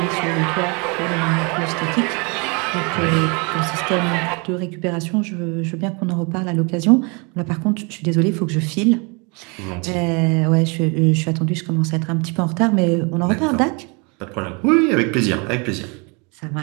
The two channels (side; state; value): left; quieter; 31.4 dB